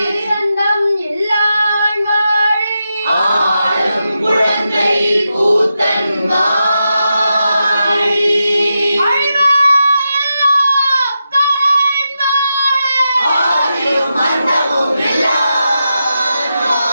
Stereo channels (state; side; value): inverted; both; correlation -0.88